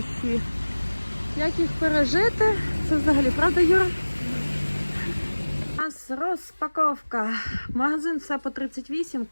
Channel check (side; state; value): both; inverted; correlation -1.00